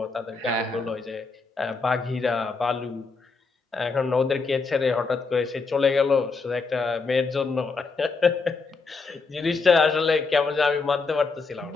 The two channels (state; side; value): quieter; right; 4.3 dB